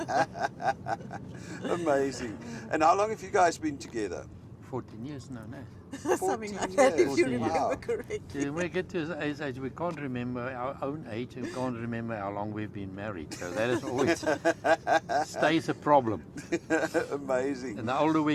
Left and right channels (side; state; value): both; identical; correlation 1.00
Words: Amazing. And how long have you guys been together? 14 years now, no. Something 14 like that, if years. you 14 remember Wow. correctly. When we get to his age, we can't remember our own age and we can't remember how long we've been married. So that is always stays a problem. Amazing. And the older